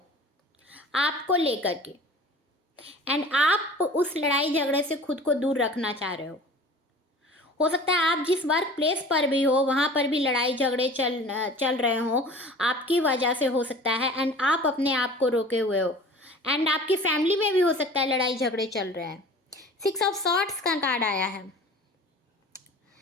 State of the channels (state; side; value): normal; both; correlation 0.43